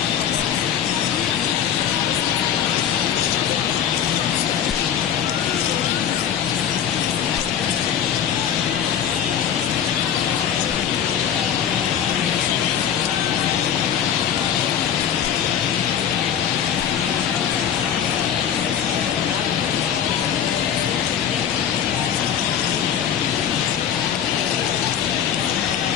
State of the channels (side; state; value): right; quieter; 9.1 dB